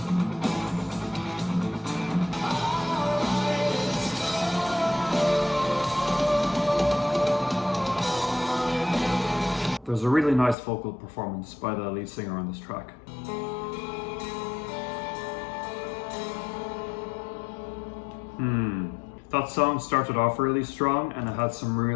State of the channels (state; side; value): drops out; right; at 10.6 s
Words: There's a really nice vocal performance by the lead singer on this track. That song started off really strong and it had some